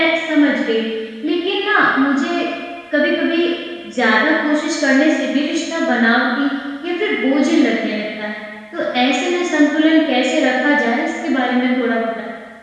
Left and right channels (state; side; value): identical; both; correlation 1.00